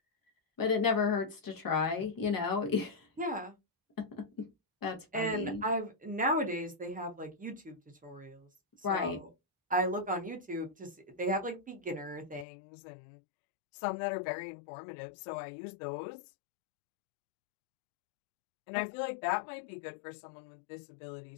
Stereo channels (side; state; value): right; drops out; at 12.5 s